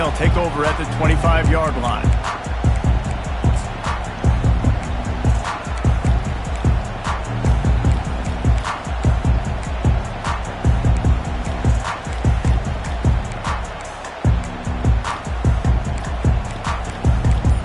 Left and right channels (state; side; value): identical; both; correlation 1.00